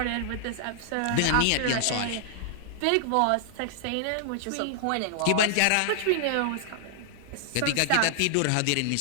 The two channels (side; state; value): both; different; correlation -0.01